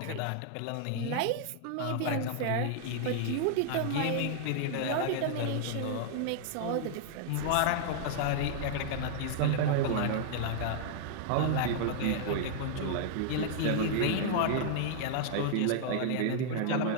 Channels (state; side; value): different; both; correlation -0.01